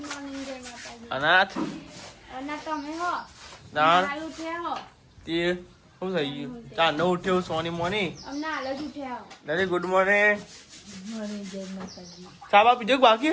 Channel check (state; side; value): identical; both; correlation 1.00